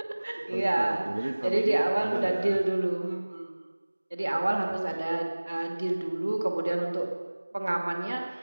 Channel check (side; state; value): both; inverted; correlation -1.00